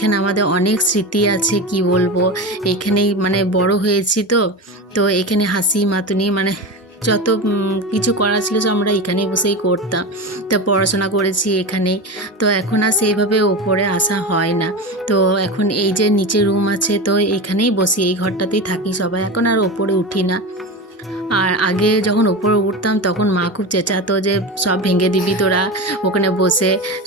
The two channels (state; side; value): normal; both; correlation 0.24